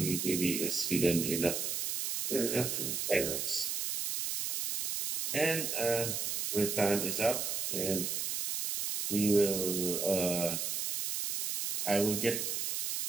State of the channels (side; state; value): right; noise; hiss, 1 dB below the sound